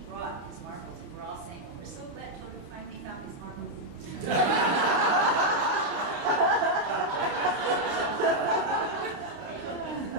brought his marbles, and we're all saying, oh, we're so glad Toru finally found his marbles.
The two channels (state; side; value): late; left; 29 ms